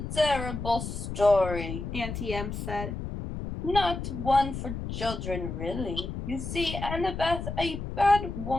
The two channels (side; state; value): left; noise; rumble, 6 dB below the sound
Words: terrible story. Auntie Em said. Not one for children, really. You see, Annabeth, a bad